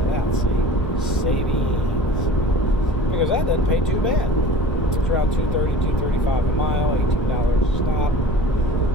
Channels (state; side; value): normal; both; correlation 0.41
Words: out, see? Savings. Because that doesn't pay too bad. It's around $2.30, $2.35 a mile, $18 a stop.